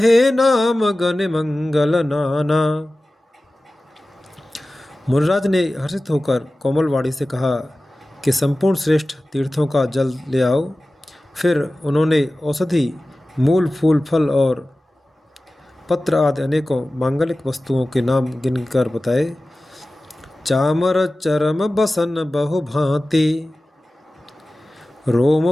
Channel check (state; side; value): normal; both; correlation 0.96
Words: नाम गण मंगल नाना। मुनिराज ने हर्षित होकर कोमल वाणी से कहा कि संपूर्ण श्रेष्ठ तीर्थों का जल ले आओ। फिर उन्होंने औषधि, मूल, फूल, फल और पत्र आदि अनेकों मांगलिक वस्तुओं के नाम गिनकर बताए। चामर चरम बसन बहु भांति, रोम